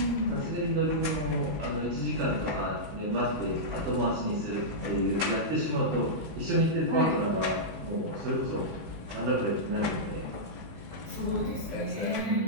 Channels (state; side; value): late; left; 19 ms